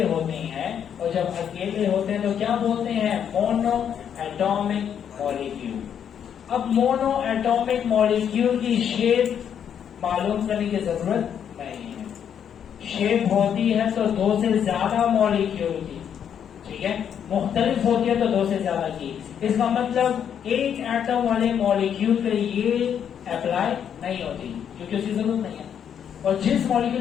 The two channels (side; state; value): right; quieter; 8.5 dB